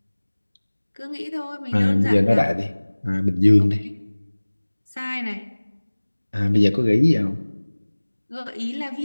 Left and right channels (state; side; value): inverted; both; correlation -1.00